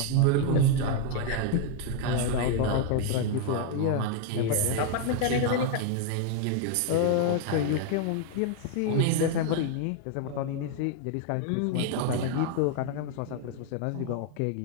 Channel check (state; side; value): different; both; correlation 0.00